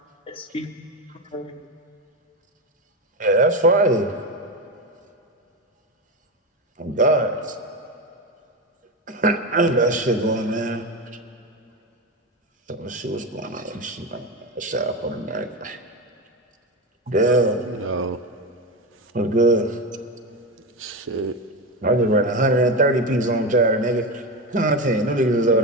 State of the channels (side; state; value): both; normal; correlation 0.17